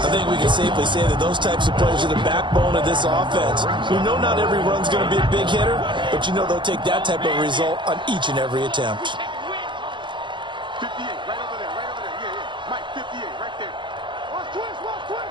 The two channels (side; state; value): left; late; 0.23 ms